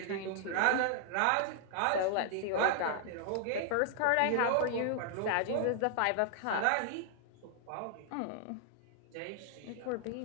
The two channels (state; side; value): different; both; correlation -0.01